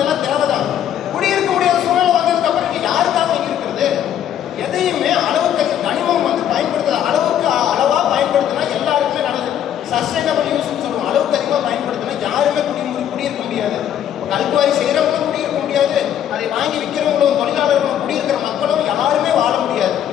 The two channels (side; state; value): right; quieter; 10.2 dB